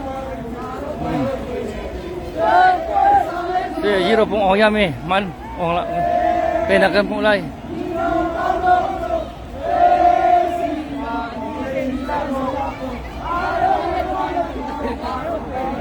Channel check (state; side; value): identical; both; correlation 1.00